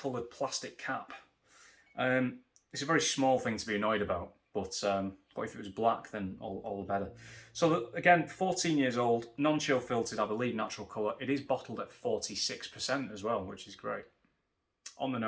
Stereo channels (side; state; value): both; identical; correlation 1.00